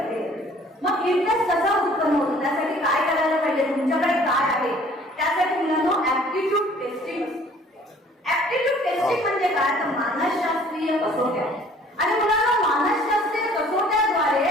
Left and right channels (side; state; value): both; normal; correlation 0.54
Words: मग इंटरेस्ट कसा उत्पन्न होतो, त्यासाठी काय करायला पाहिजे, तुमच्याकडे काय आहे, त्यासाठी मुलांना ऍप्टिट्यूड टेस्टिंग. ऍप्टिट्यूड टेस्टिंग म्हणजे मानसशास्त्रीय कसोट्या. आणि मुलांना मानसशास्त्रीय